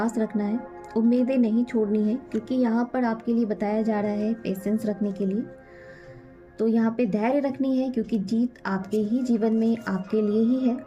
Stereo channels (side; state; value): both; identical; correlation 1.00